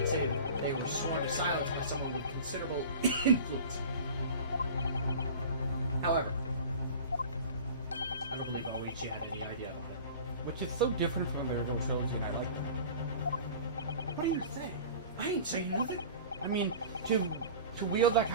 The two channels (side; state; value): both; inverted; correlation -0.39